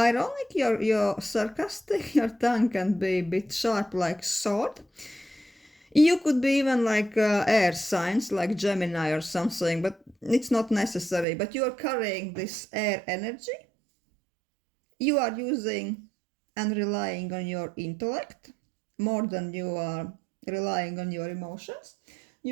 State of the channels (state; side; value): drops out; left; at 11.2 s